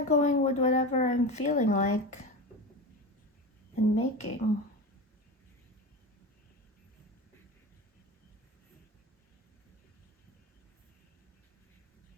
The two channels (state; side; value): normal; both; correlation 0.26